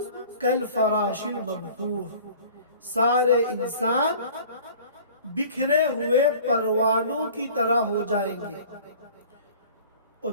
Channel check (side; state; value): both; inverted; correlation -0.47